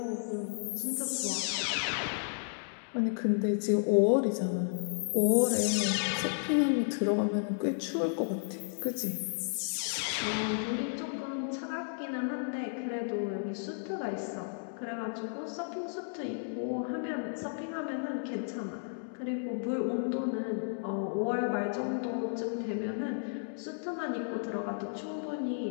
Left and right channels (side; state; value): right; silent; digital silence